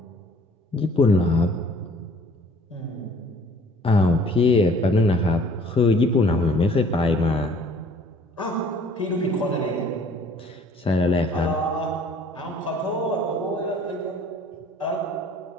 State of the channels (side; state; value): both; normal; correlation 0.54